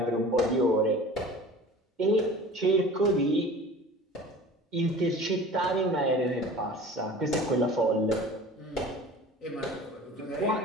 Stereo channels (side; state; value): both; normal; correlation 0.41